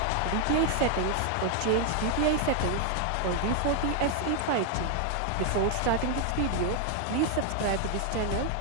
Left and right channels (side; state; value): both; different; correlation 0.00